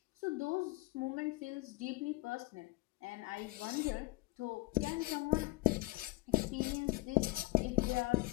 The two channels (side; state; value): right; quieter; 21.6 dB